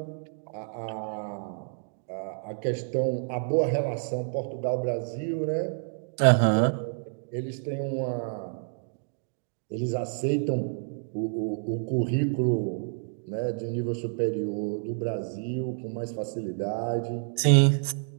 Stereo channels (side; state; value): left; silent; digital silence